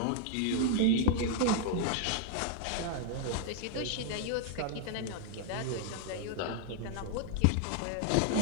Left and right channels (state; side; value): different; both; correlation -0.01